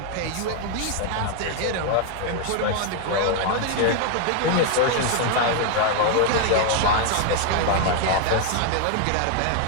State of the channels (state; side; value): different; both; correlation 0.00